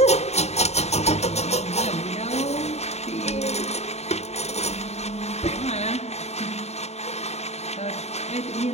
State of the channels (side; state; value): right; late; 0.31 ms